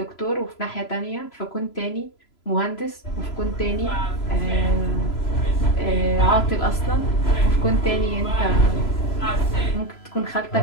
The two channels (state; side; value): late; right; 3.0 ms